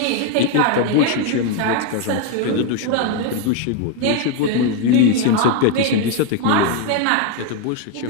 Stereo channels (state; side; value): different; both; correlation 0.01